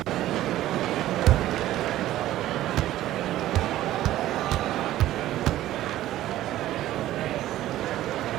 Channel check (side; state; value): left; quieter; 14.2 dB